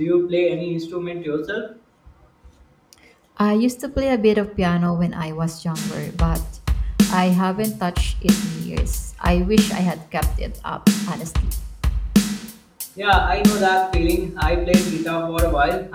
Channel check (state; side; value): identical; both; correlation 1.00